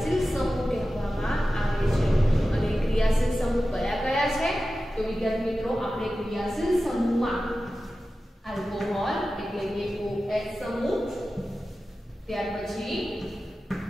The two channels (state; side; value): normal; both; correlation 0.94